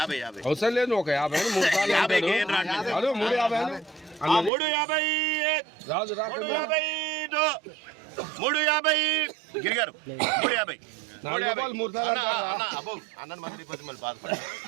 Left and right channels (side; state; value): left; drops out; at 4.5 s